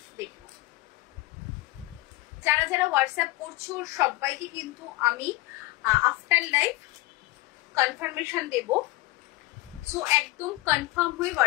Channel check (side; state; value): right; quieter; 19.9 dB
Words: যারা যারা হোয়াটসঅ্যাপ করছো সবাইকে কিন্তু আমি আফটার লাইভ কনফার্মেশন দেব। সো একদম কনফার্ম হয়ে